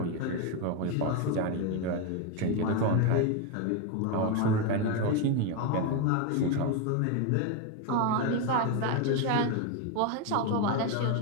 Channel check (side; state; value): both; different; correlation 0.02